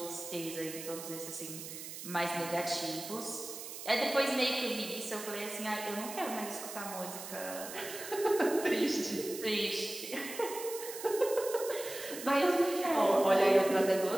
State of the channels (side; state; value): right; noise; hiss, 10 dB below the sound